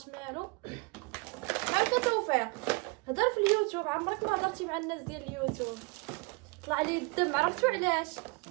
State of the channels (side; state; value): left; quieter; 29.1 dB